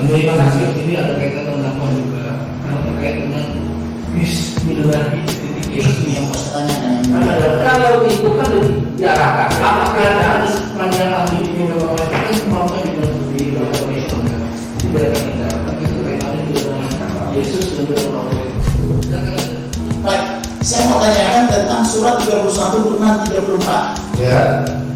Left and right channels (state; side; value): identical; both; correlation 1.00